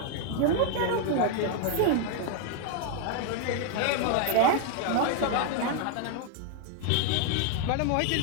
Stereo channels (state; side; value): different; both; correlation 0.00